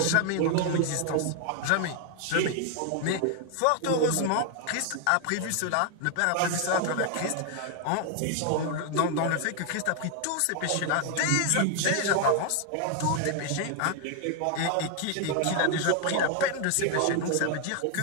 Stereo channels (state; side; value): different; both; correlation 0.00